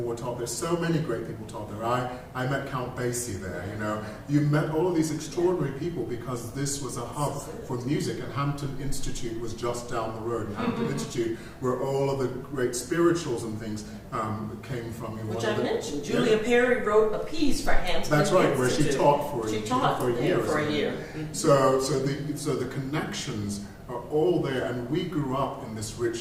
taught there. So many great people taught there. I met Count Basie there, You met all of these extraordinary people because this was a hub for music, and Hampton Institute was just down the road. And Hampton Institute, where all of the great spirituals and things came from. Which I mentioned. Julia Perry wrote a piece for Hampton That's right, Institute. where she taught for a year. So the connections are all there, and we grew up in this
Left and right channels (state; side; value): identical; both; correlation 1.00